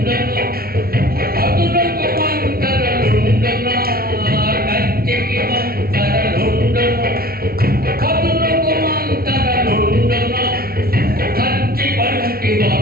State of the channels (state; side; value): late; left; 0.44 ms